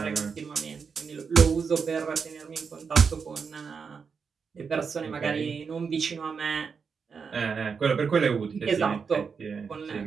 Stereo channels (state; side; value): quieter; left; 5.8 dB